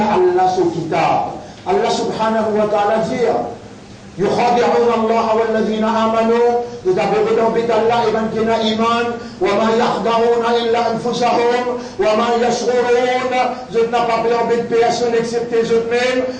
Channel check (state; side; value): identical; both; correlation 1.00